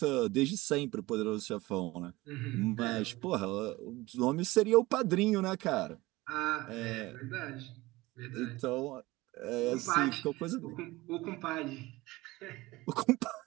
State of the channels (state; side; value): quieter; left; 20.1 dB